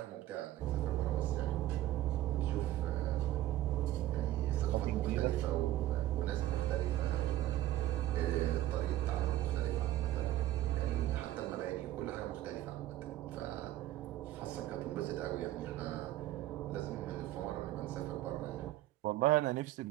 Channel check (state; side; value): quieter; left; 14.5 dB